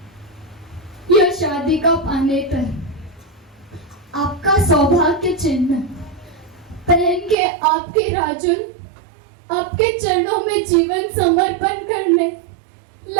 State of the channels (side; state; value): left; drops out; at 7.4 s